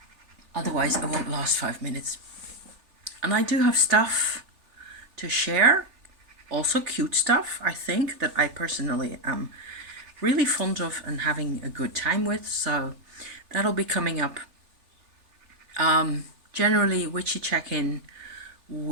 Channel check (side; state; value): left; late; 3.4 ms